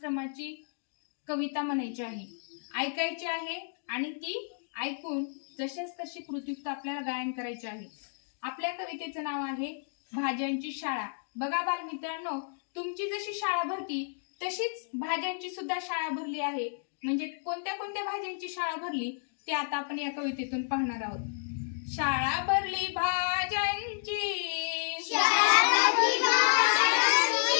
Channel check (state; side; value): silent; right; digital silence